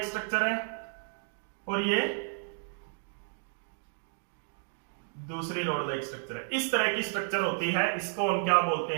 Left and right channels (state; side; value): silent; left; digital silence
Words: स्ट्रक्चर है और ये दूसरी रोड लाइक स्ट्रक्चर है। इस तरह की स्ट्रक्चर होती है, इसको हम क्या बोलते